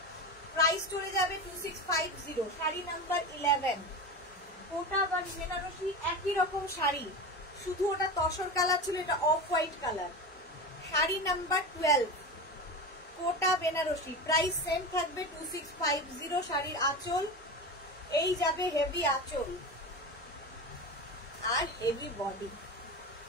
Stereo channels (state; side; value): normal; both; correlation 0.25